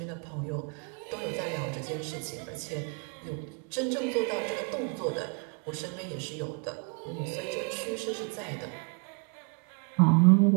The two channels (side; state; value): left; quieter; 35.2 dB